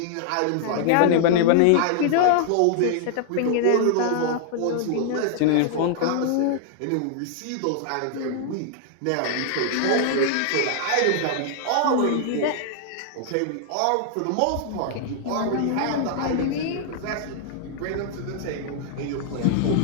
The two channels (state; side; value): different; both; correlation -0.01